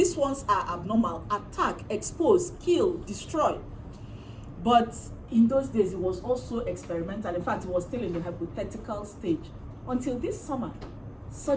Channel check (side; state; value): both; identical; correlation 1.00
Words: ones are abnormal, attack, expose, kill, destroy. But in those days, it was also experimental. In fact, it was still in the hypothetical stage. Until this summer,